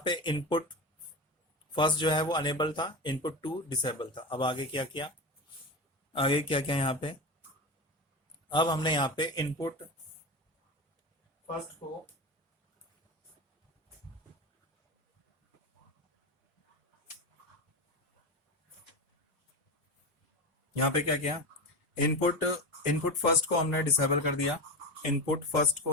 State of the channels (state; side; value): normal; both; correlation 0.21